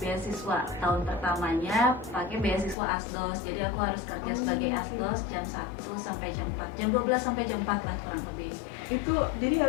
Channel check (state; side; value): drops out; right; at 2.8 s